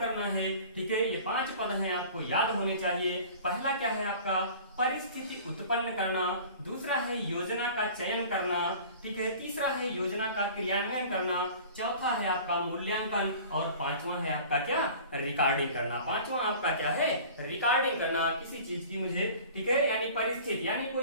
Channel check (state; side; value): inverted; both; correlation -0.43